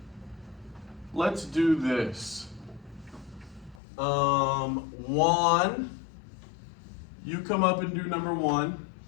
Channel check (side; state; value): right; drops out; at 3.8 s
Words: let's do this. One, you come up and do number 1.